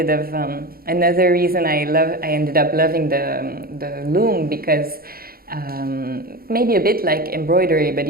of another reason I ended up loving the loom, because maybe a bit like embroidery, but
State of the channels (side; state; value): left; late; 0.43 ms